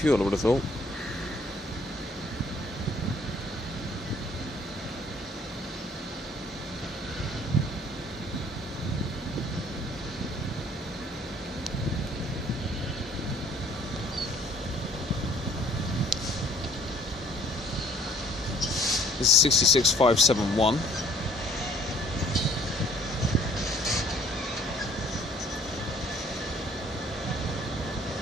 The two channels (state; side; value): normal; both; correlation 0.59